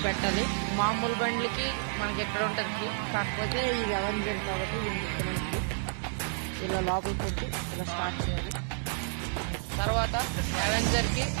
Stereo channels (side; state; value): left; silent; 58 dB below the other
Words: పెట్టాలి. మామూలు బండ్లకి మనకి ఎక్కడ ఉంటుంది కీ, కాకపోతే ఇది అవెంజర్ కాబట్టి మనకి ఇలా లోపల పెట్టి ఇలా స్టార్ట్ చేయాలి. తర్వాత అవెంజర్కి